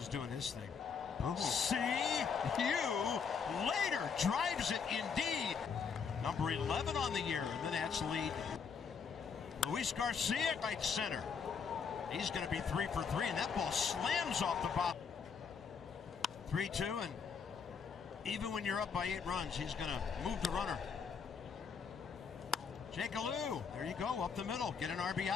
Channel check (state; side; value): quieter; right; 6.2 dB